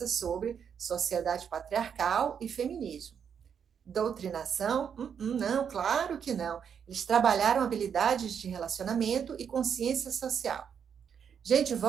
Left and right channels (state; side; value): quieter; left; 7.5 dB